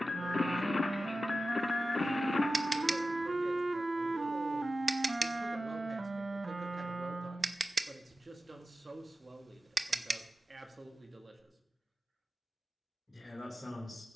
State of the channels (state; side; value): normal; both; correlation 0.94